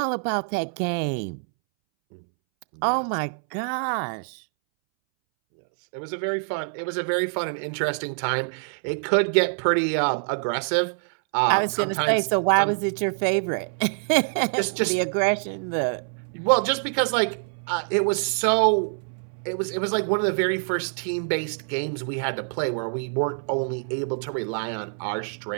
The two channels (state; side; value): silent; left; 62 dB below the other